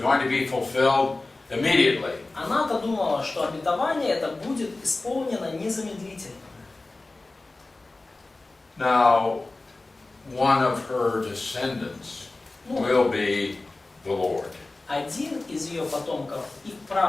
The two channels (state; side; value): quieter; right; 3.1 dB